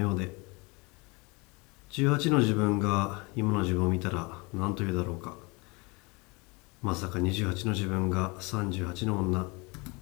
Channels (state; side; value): quieter; right; 27.6 dB